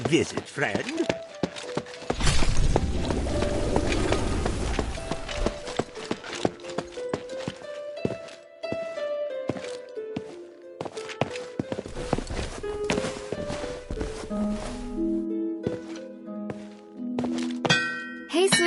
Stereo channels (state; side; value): identical; both; correlation 1.00